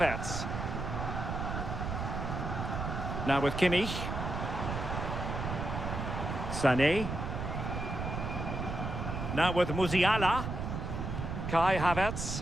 Now with Kimmich. Sané. Now with Musiala. Kai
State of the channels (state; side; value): noise; right; rumble, 4 dB below the sound